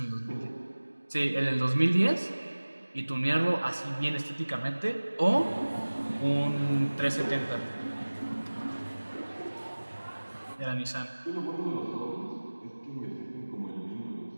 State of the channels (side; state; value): both; inverted; correlation -1.00